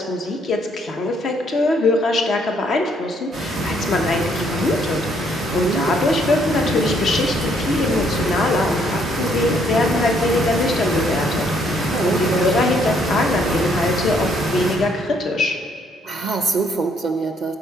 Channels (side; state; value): both; normal; correlation 0.68